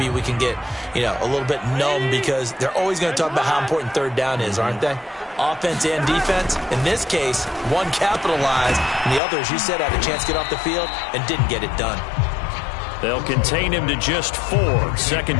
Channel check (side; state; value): right; drops out; at 9.2 s